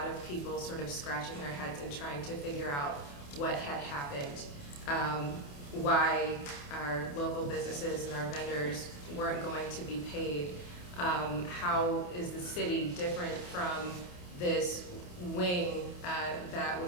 of people sort of scratching their heads and trying to figure out what had happened, why our local businesses and our vendors weren't going to be paid. How is the city different from this wing that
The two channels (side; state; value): right; late; 28 ms